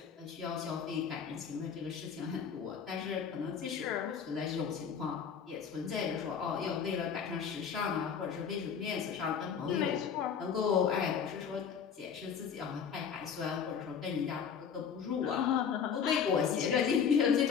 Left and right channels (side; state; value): right; quieter; 7.1 dB